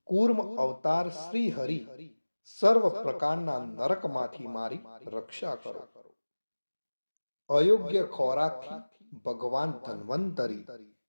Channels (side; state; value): both; inverted; correlation -1.00